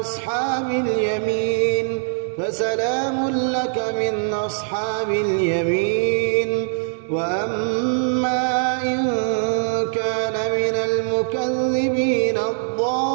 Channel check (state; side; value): silent; left; digital silence